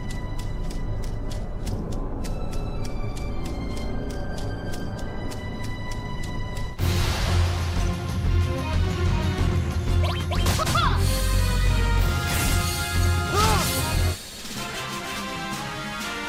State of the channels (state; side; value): identical; both; correlation 1.00